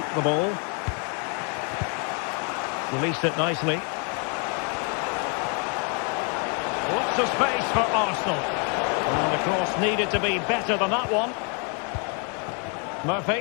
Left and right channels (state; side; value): quieter; right; 38.2 dB